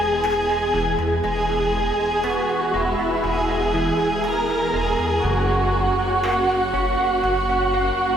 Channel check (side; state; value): both; normal; correlation 0.74